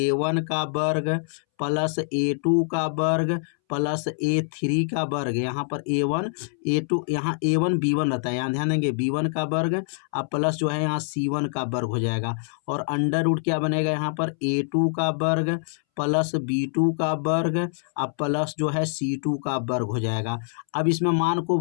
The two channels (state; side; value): silent; right; 62 dB below the other